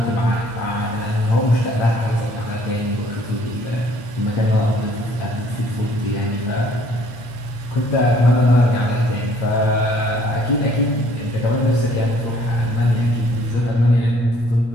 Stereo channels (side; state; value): right; late; 8.5 ms